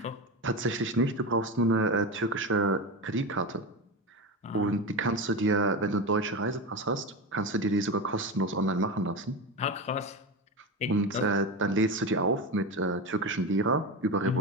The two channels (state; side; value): normal; both; correlation 0.20